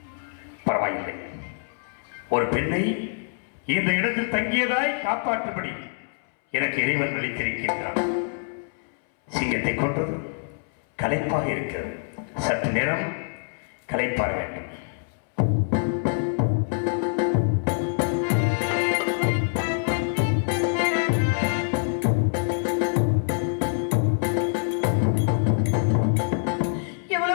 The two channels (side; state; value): right; silent; 62 dB below the other